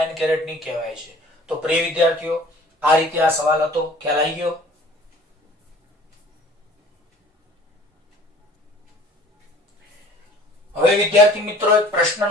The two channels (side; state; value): both; normal; correlation 0.49